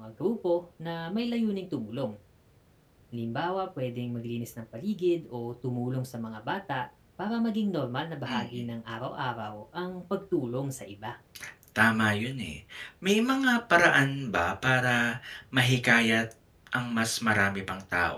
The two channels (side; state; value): both; identical; correlation 1.00